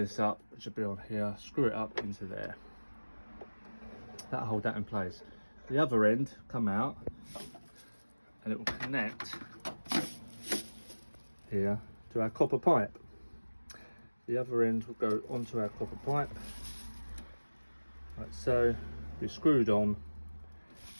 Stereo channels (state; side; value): inverted; both; correlation -1.00